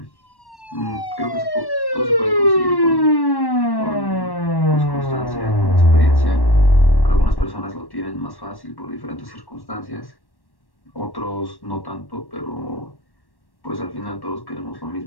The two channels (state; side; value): late; right; 1.1 ms